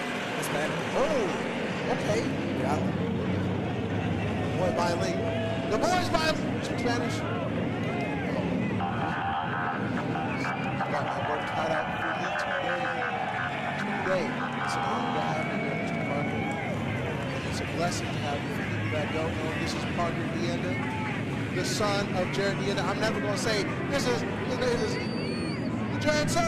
Hispanic. Oh, okay. Yeah. Boy, bilingual. The boy's bilingual. Speak Spanish. Got my work cut out for me today. It's an honor to have you here, Mr. Parker. It's a blessing to have you. For people that don't know, this is Parker Deanda, the son of Jared Deanda. I'm never going to say, this is Jared's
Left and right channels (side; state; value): both; identical; correlation 1.00